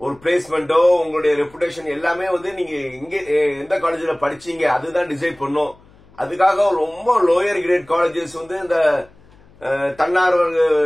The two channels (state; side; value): noise; left; hum, 27 dB below the sound